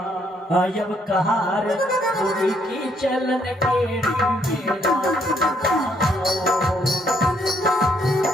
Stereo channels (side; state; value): both; normal; correlation 0.70